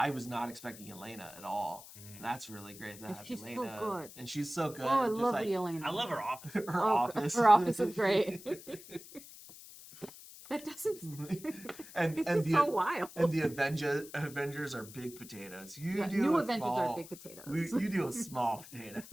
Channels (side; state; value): left; noise; hiss, 17 dB below the sound